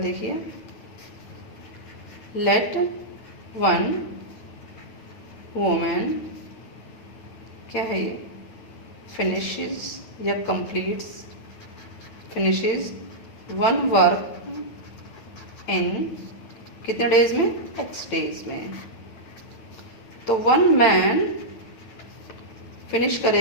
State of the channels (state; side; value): late; right; 8.9 ms